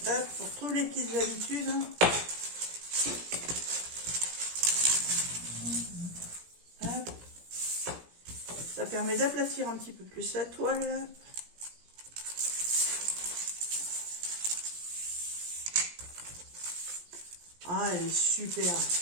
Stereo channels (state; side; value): late; left; 17 ms